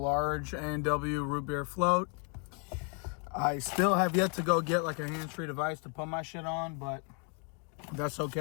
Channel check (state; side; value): quieter; right; 37.8 dB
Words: A&W root beer float. I still have yet to go get like a hands-free device to put my shit on, but that's